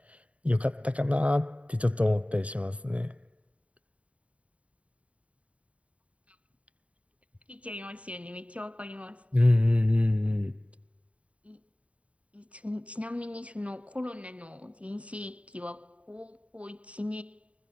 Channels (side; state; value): left; late; 0.065 ms